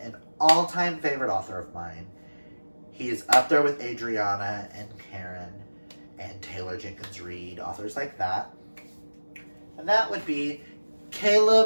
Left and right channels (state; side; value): inverted; both; correlation -1.00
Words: an all-time favorite author of mine. He is up there with Adriana and Karen and Taylor Jenkins Reid, authors like that. And that would be